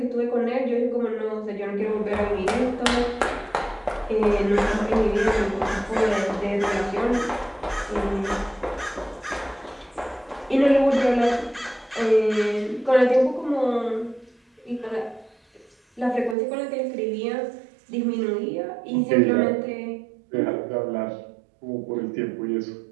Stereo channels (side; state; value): left; drops out; at 16.4 s